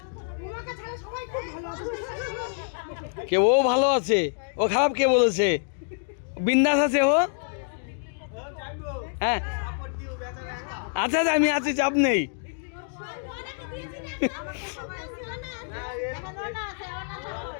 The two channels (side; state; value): right; silent; digital silence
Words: কে ও ভালো আছে? ও খারাপ কে বলেছে? বিন্দাস আছে ও। হ্যাঁ আচ্ছা আচ্ছা আমি আছি, চাপ নেই।